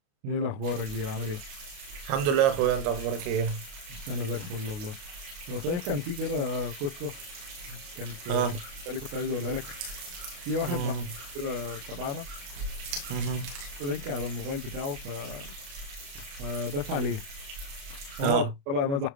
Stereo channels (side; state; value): left; late; 29 ms